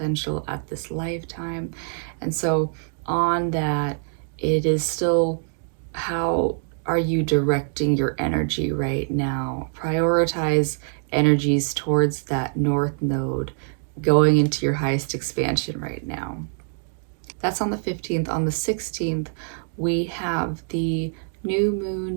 at this lifetime. And so on that, it is still how are you directing your energy right now? Prioritize energies towards that North Node going into your highest expansion right now. That's on the 15th. On the 16th, we have the new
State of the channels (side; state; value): left; silent; 62 dB below the other